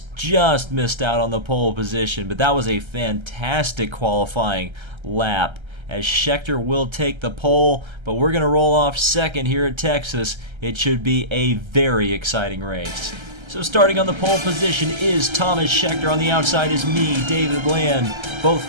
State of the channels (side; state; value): left; late; 1.3 ms